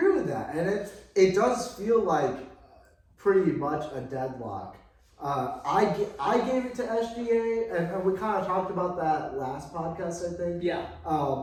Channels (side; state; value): both; identical; correlation 1.00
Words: with that, and it does feel like pretty much a deadlock. I gave it to SGA, and we kind of talked about that last podcast, I think. Yeah.